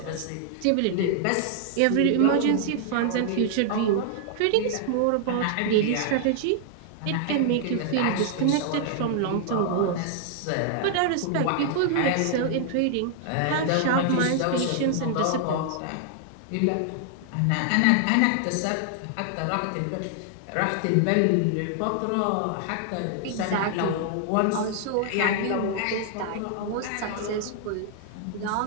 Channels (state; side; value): different; both; correlation 0.00